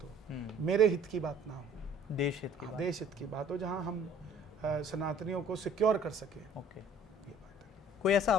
हो, मेरे हित की बात ना हो, देश हित की बात, देश हित की बात हो, जहाँ हम सनातनियों को सिक्योर कर सके। ओके, ये बात है। कोई ऐसा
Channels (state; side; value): normal; both; correlation 0.53